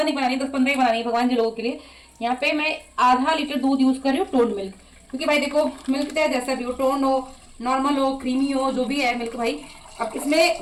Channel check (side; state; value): both; identical; correlation 1.00